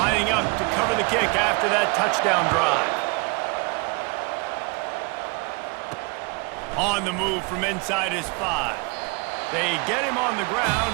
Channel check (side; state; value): left; quieter; 30.3 dB